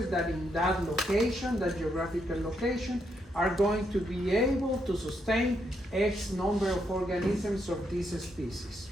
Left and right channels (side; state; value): both; normal; correlation 0.78